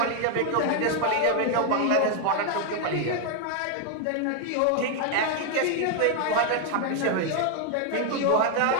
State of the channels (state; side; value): different; both; correlation 0.01